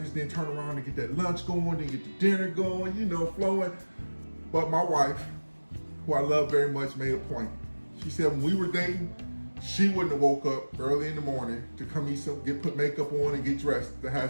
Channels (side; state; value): both; inverted; correlation -1.00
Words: then turn around and get that lunch going, then get the dinner going, you know, flowing. But my wife, who I love very much, made a point. She said when we were dating, she wouldn't have woke up early in the morning to come eat some, put makeup on and get dressed to